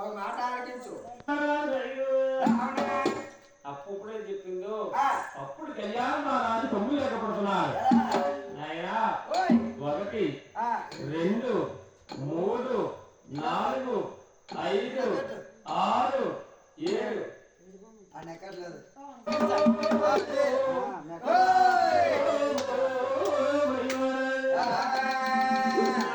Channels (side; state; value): both; identical; correlation 1.00